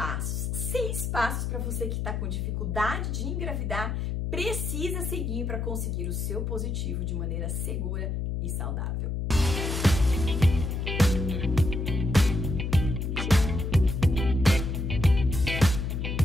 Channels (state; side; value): noise; left; hum, 1 dB below the sound